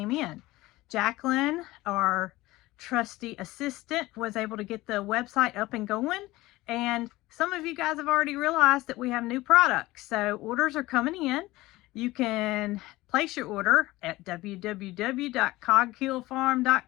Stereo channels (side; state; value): right; quieter; 18.8 dB